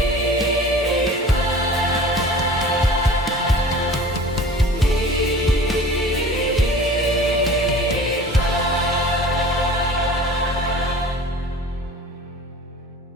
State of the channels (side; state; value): both; normal; correlation 0.42